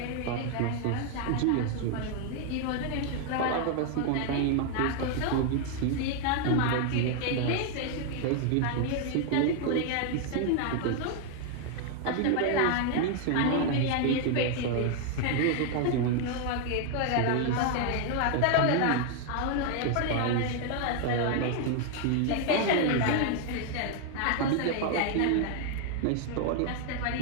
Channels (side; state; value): both; different; correlation 0.00